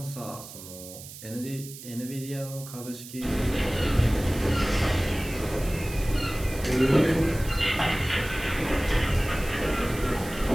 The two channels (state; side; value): noise; right; hiss, 14 dB below the sound